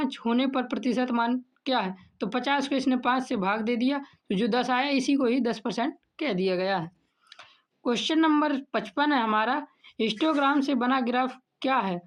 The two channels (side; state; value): both; identical; correlation 1.00